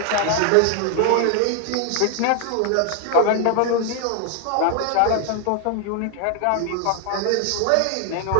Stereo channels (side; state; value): both; different; correlation 0.00